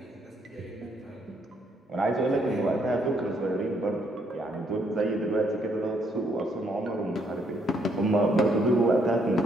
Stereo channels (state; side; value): normal; both; correlation 0.71